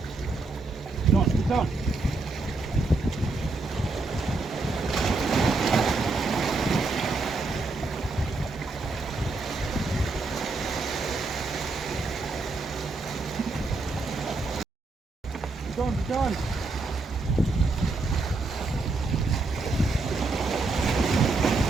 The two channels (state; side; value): quieter; left; 3.5 dB